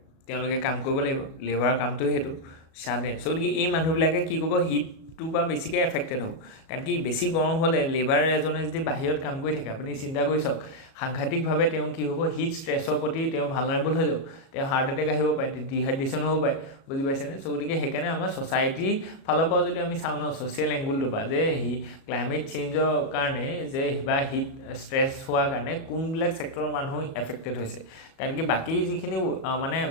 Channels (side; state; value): right; late; 37 ms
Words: তেওঁলোকে কাম কৰিব লাগিব লেবাৰ কামটো সেইটো চাডেন চ' গতিকে এই মানুহবিলাকে কি কৰিব হিটটোৰ পৰা বেছিকৈ এফেক্টেড হ'ব কাৰণ কি বেছি গৰম হ'লে লেবাৰ এজনে যদি বাহিৰত কাম কৰি থাকে আপুনি চিন্তা কৰি চাওক সাংঘাতিকভাৱে তেওঁ কি হ'ব হিট ষ্ট্ৰেছৰ প্ৰতি তেওঁ ভালনাৰেবল হৈ যাব তেওঁ হাৰ্ট এটেক আহিব পাৰে ডিহাইড্ৰেশ্যন হ'ব পাৰে বুজি পাইছেনে চ' গতিকে সেইকাৰণে আমাৰ ছ'চাইটিৰ ফালৰ পৰা যদি আমি চাওঁ ন ছ'চিয়েল এংগুলটোৰ পৰা যে ক্লাইমেট চেঞ্জৰ কাৰণে যে বা হিট ষ্ট্ৰেছ হোৱাৰ কাৰণে কোনবিলাক ছেক্টৰৰ মানুহ এফেক্টেড হৈছে কাৰণ কি বাকী যিখিনি মানে